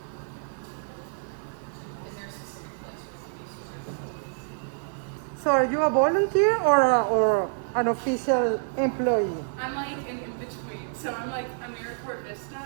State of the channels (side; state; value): left; silent; digital silence